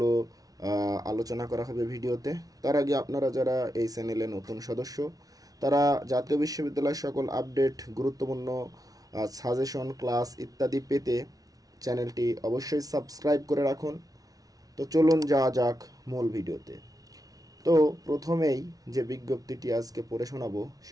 আলোচনা করা হবে ভিডিওতে। তার আগে আপনারা যারা এই চ্যানেলে নতুন সদস্য, তারা জাতীয় বিশ্ববিদ্যালয়ের সকল আপডেট, গুরুত্বপূর্ণ সাজেশন, ক্লাস ইত্যাদি পেতে চ্যানেলটি অবশ্যই সাবস্ক্রাইব করে রাখুন। তো চলুন যাওয়া যাক মূল ভিডিওতে। তো প্রথমেই যে বিজ্ঞপ্তিটি আজকে পড়ে শোনাবো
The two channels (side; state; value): left; late; 0.18 ms